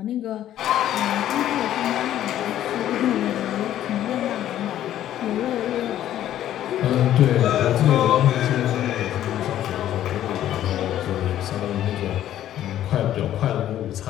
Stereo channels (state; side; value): quieter; right; 12.0 dB